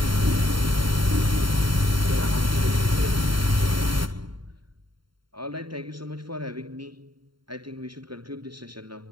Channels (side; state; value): left; late; 0.73 ms